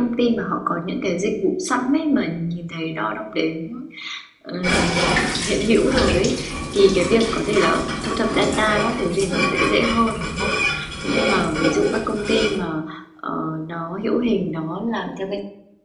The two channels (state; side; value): identical; both; correlation 1.00